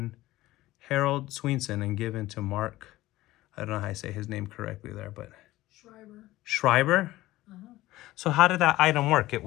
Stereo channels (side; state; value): right; quieter; 17.0 dB